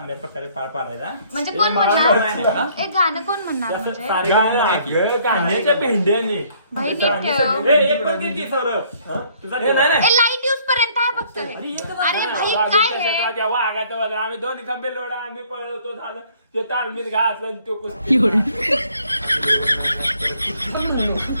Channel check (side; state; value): both; inverted; correlation -0.61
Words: प्रकारे पार पाडायचा. म्हणजे कोण म्हणणार एक गाणं कोण म्हणणार म्हणजे गाण्याच्या भेंड्याने भाई नीट ठेव. लाईट यूज पर्यंत आहे फक्त. अरे भाई काय हे तेव्हा आगात आम्ही दोन खंबे लोडा आम्ही पळवतो झालं ते तालमीत घातलं तो कुस्ती.